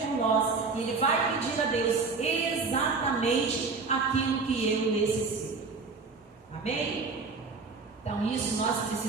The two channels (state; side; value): quieter; left; 4.4 dB